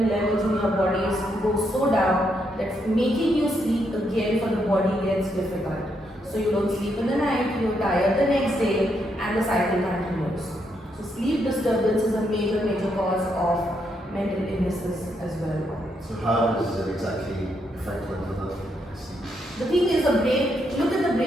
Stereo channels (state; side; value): normal; both; correlation 0.78